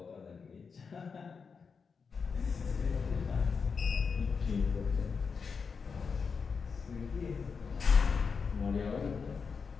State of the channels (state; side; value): quieter; right; 5.5 dB